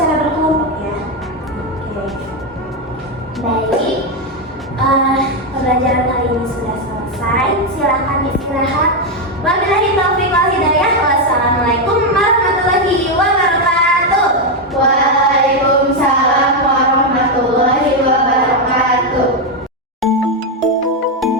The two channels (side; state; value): both; normal; correlation 0.05